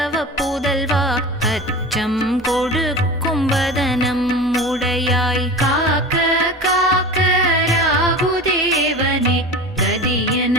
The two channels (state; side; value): normal; both; correlation 0.32